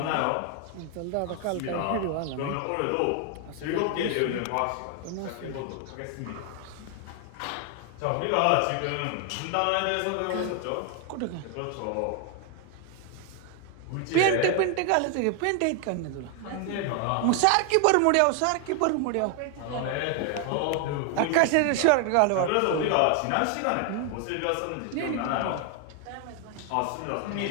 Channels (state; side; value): different; both; correlation 0.00